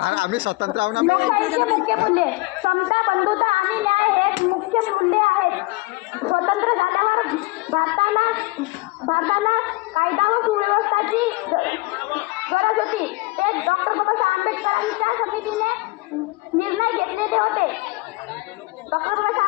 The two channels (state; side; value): quieter; right; 23.2 dB